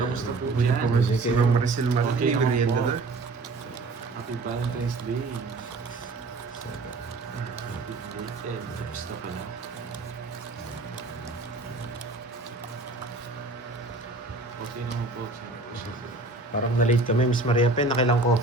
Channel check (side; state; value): left; quieter; 3.3 dB